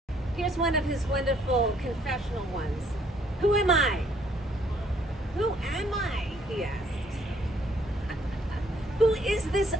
Here's one of his wonderful confessional ones. Who am I? Who am I? He asks. Who is this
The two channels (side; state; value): both; normal; correlation 0.65